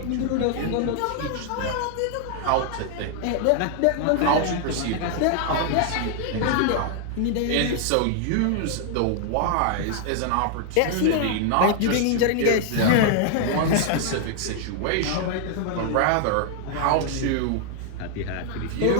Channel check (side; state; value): both; different; correlation 0.00